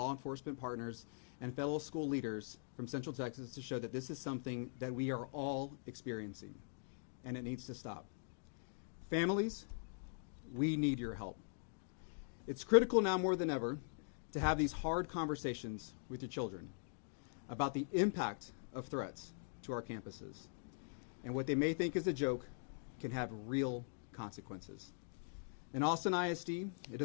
enforcement partners and fellow school leaders from Central Texas to show that this is something that we are all experiencing, and it needs to stop. Families, we need your help. It's critical now more than ever to have these hard conversations with your children about the impact of threats to our campuses. And what they may think is a joke can have real consequences. In Austin ISD, it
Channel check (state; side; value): silent; right; digital silence